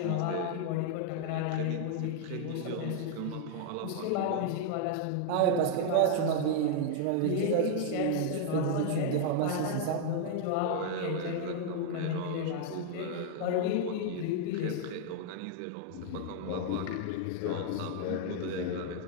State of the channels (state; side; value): different; both; correlation 0.00